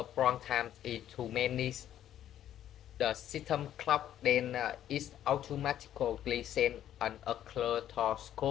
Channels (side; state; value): right; quieter; 11.3 dB